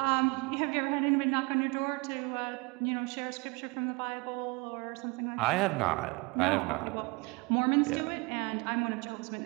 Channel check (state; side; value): quieter; left; 26.5 dB